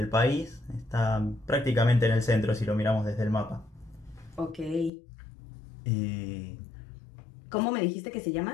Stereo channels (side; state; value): right; drops out; at 4.9 s